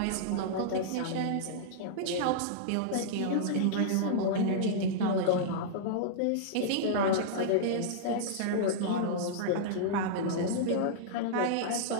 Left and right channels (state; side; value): different; both; correlation -0.02